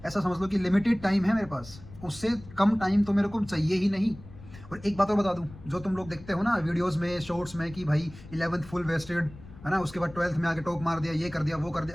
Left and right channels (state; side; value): noise; left; rumble, 18 dB below the sound